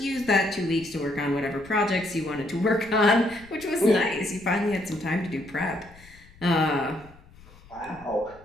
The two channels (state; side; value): noise; left; rumble, 24 dB below the sound